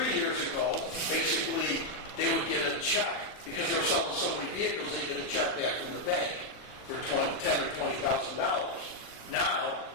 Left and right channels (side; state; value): right; late; 40 ms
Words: years ago, basically they would get a check because they were selling so many vehicles. They get a check back from the bank for $10,000 or $20,000. Now